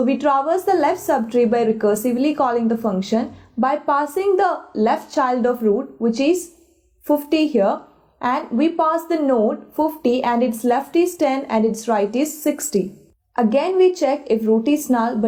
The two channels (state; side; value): identical; both; correlation 1.00